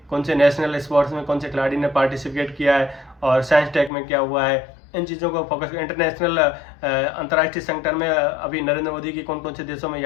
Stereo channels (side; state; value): right; drops out; at 3.9 s